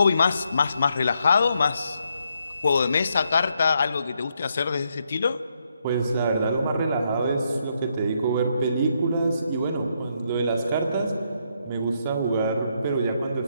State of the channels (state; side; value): inverted; both; correlation -0.77